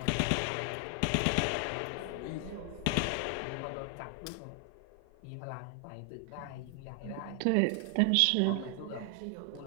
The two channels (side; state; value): both; different; correlation 0.00